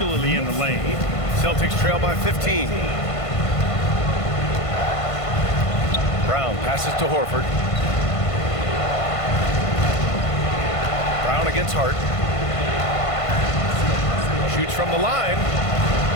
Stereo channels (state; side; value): late; right; 1.5 ms